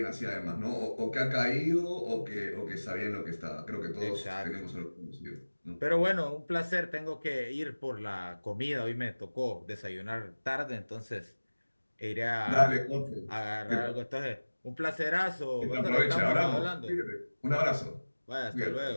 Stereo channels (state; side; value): inverted; both; correlation -1.00